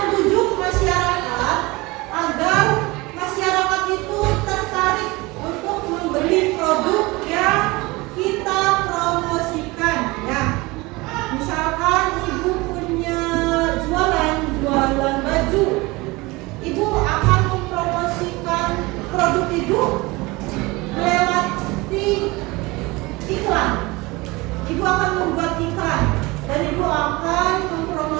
masyarakat agar masyarakat itu tertarik untuk membeli produk yang kita promosikan ya. Misalkan ibu punya jualan baju, ibu akan mempromosikan produk ibu melewati iklan. Ibu akan membuat iklan dan ibu akan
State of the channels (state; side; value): quieter; left; 22.9 dB